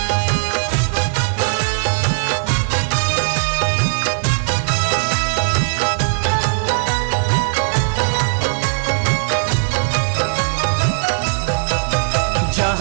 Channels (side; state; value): left; silent; digital silence